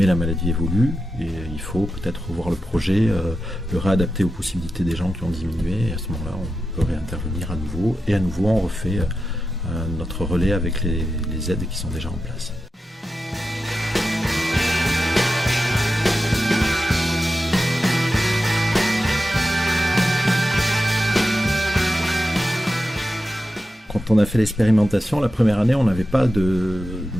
la maladie évolue et il faut peut-être revoir le projet, le réadapter aux possibilités des gens qui ont diminué, et à ce moment-là on peut réintervenir à nouveau, et à nouveau on refait notre relais avec les aides qui sont déjà en place. Quand on a fait l'expérimentation, la première année, on n'avait pas de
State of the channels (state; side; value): normal; both; correlation 0.91